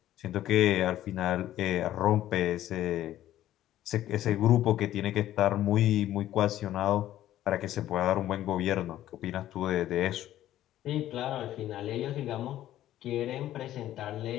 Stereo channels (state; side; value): quieter; right; 13.1 dB